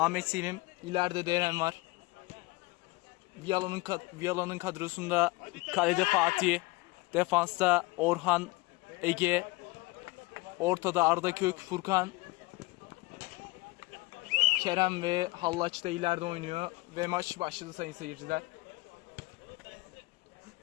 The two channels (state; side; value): quieter; right; 22.8 dB